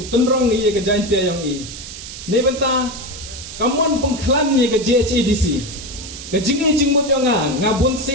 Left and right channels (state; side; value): noise; right; hiss, 12 dB below the sound